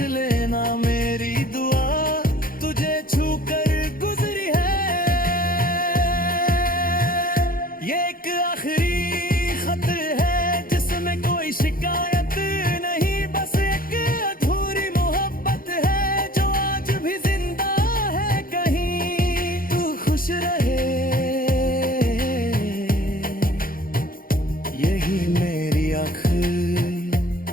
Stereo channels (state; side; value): late; right; 0.41 ms